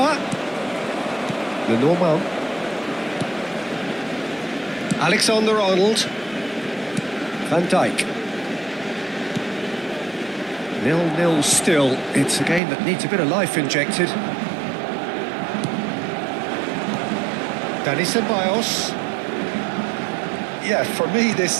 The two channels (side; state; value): left; drops out; at 12.6 s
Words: Lenormand. Alexander-Arnold. Van Dijk. 0-0 still. It's a game that needs a bit of life injected. Dani Ceballos. Yeah, for me